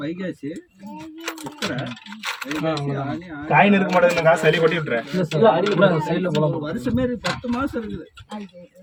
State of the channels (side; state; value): both; identical; correlation 1.00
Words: வைகாசி காயின் இருக்க மாட்டேங்குது. காசு அள்ளி கொட்டி விட்டுறேன். வருஷமே 10 மாசம் இருக்குது.